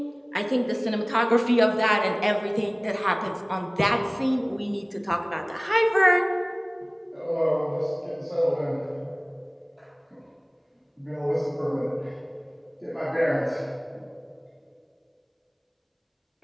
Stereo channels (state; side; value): identical; both; correlation 1.00